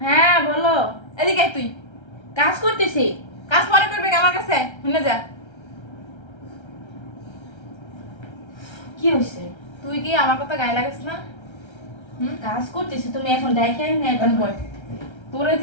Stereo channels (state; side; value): late; right; 1.3 ms